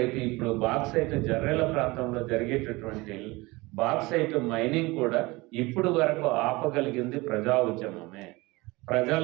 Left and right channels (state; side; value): quieter; left; 22.6 dB